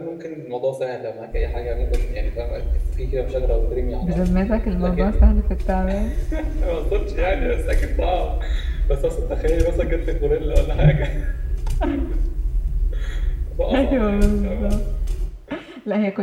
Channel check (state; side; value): identical; both; correlation 1.00